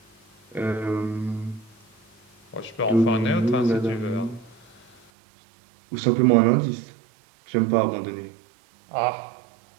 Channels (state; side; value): drops out; left; at 5.0 s